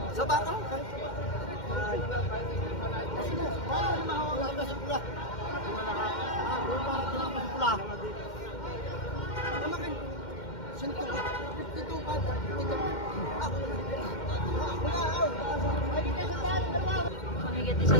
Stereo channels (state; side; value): late; right; 2.1 ms